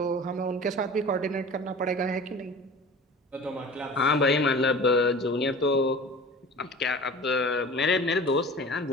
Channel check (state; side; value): normal; both; correlation 0.40